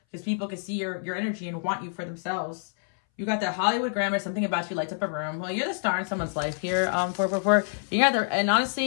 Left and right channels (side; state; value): right; silent; 60 dB below the other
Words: because people can see your energy and want you for themselves. You got that Hollywood grammar, something about you lights up a room. Well, you're the star in someone's life here, 444. And